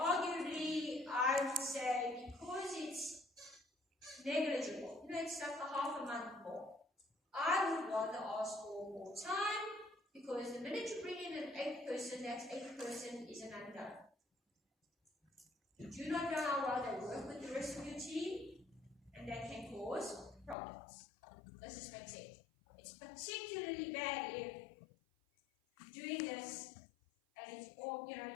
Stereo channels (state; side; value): drops out; right; at 20.6 s